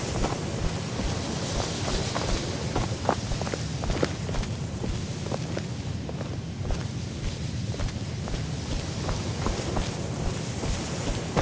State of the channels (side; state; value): both; identical; correlation 1.00